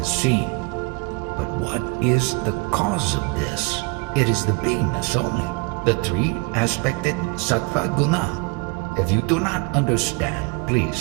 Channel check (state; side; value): quieter; left; 28.5 dB